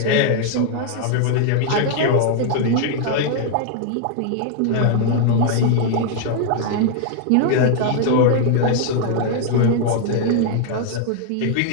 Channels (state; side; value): different; both; correlation 0.00